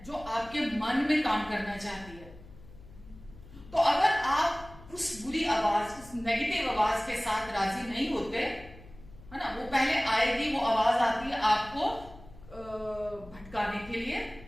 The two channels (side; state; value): left; noise; hum, 19 dB below the sound